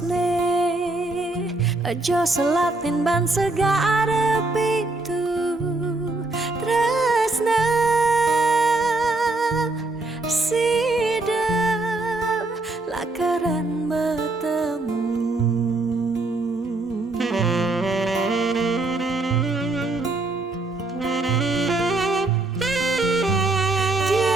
aja selatin ban segara pitu tresna sidem lakaran bertemu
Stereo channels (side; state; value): left; quieter; 3.1 dB